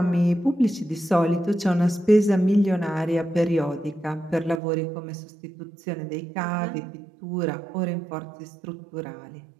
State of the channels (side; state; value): left; drops out; at 4.6 s